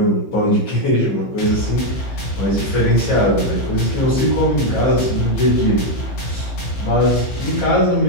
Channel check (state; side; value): late; right; 15 ms